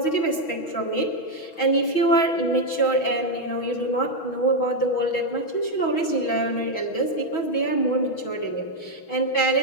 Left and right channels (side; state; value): right; late; 6.2 ms